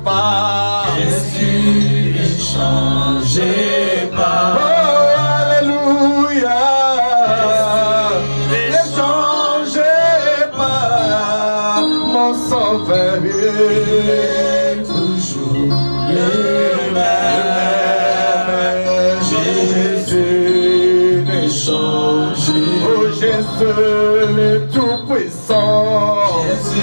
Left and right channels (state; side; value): inverted; both; correlation -1.00